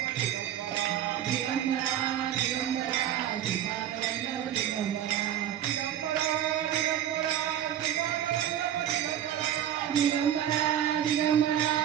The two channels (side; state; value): left; quieter; 10.7 dB